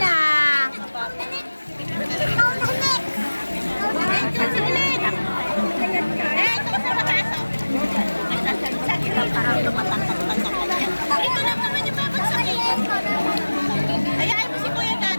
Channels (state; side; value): inverted; both; correlation -1.00